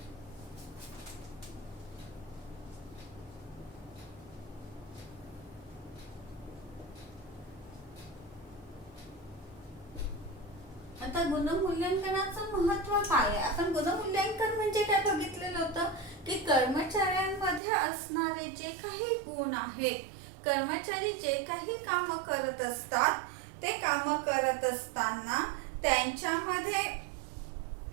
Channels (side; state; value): left; drops out; at 17.6 s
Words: आता गुणमूल्यांकनाचं महत्त्व काय आहे. आपण गुणमूल्यांकन म्हणजे काय बघितलेलं होतं की कर्मचाऱ्यांमध्ये असणारे जे काही गुण आहेत, कर्मचारी जे काही काम करत असतात ते काम करत असताना त्यांच्यामध्ये